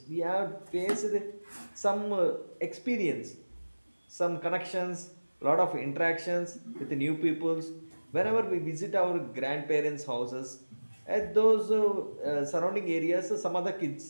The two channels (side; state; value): both; inverted; correlation -1.00